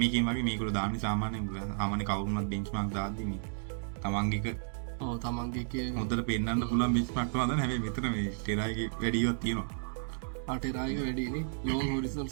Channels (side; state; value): left; silent; digital silence